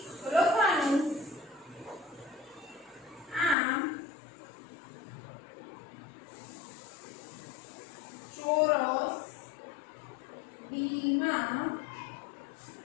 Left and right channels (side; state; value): right; drops out; at 3.6 s